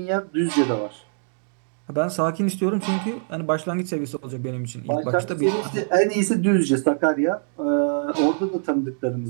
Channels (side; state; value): left; silent; digital silence